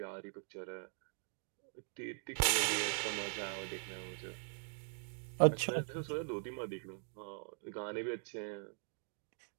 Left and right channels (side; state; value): left; silent; 50 dB below the other